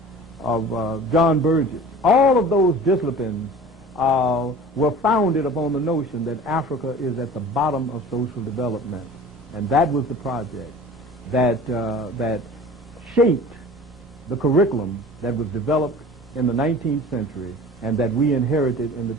John Burgess, all of those disciplines were founded upon the notion that Africa is at the bottom of social development. And that was the project that shaped the curriculum that was developed in the 19th century and that we inherited in the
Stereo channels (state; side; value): normal; both; correlation 0.41